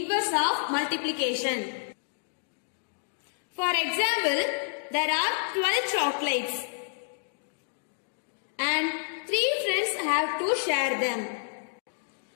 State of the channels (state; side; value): silent; right; digital silence